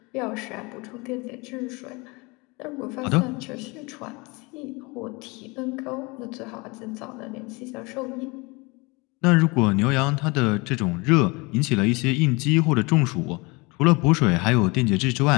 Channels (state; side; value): quieter; right; 26.5 dB